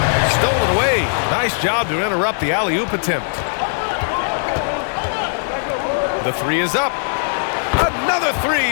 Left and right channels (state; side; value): silent; right; digital silence